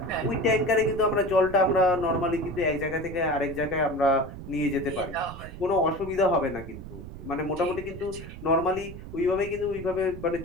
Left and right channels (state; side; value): noise; right; rumble, 12 dB below the sound